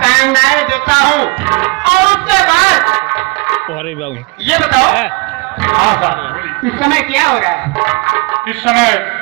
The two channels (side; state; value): left; quieter; 27.1 dB